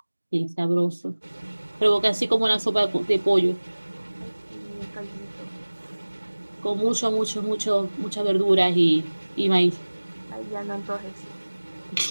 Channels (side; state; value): both; inverted; correlation -1.00